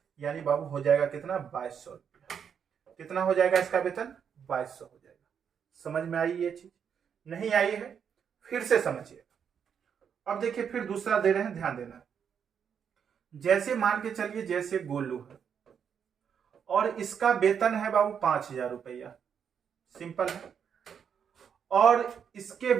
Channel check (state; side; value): quieter; left; 7.5 dB